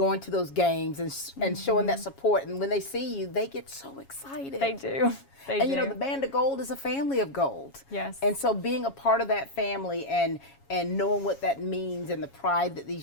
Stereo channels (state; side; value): late; right; 7.3 ms